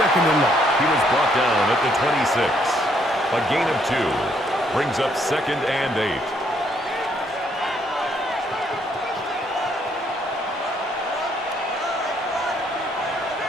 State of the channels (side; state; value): both; normal; correlation 0.70